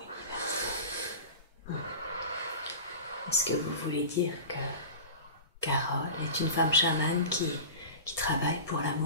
Est-ce que vous voulez dire que Carole est une femme chamane qui travaille pour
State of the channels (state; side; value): inverted; both; correlation -0.31